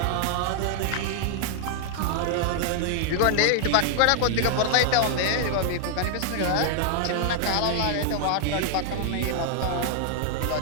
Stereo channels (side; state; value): both; different; correlation 0.00